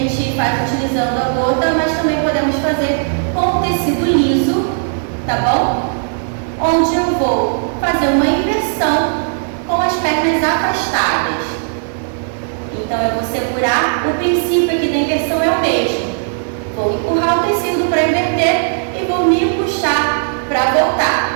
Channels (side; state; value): left; silent; digital silence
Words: faz utilizando a gota, mas também podemos fazer com tecido liso, tá bom? Onde eu vou fazer uma inversão com as pernas afastadas. Então eu vou segurar, o princípio aqui da inversão é o mesmo. Vou empurrar o tecido para inverter e vou me puxar para